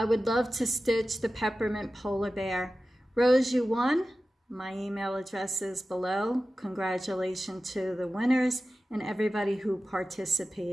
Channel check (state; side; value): normal; both; correlation 0.95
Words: would love to stitch the Peppermint Polar Bear. Rose, you won. My email address is below. Congratulations to the winners and everybody who